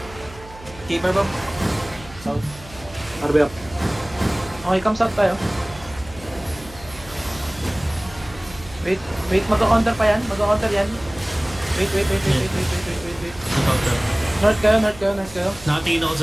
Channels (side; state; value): right; noise; hum, 19 dB below the sound